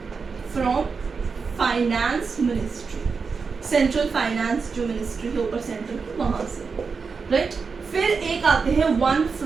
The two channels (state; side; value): quieter; left; 5.1 dB